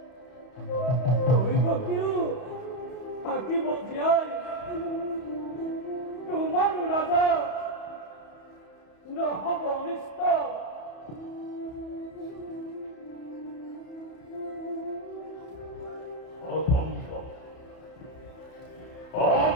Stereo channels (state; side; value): late; right; 31 ms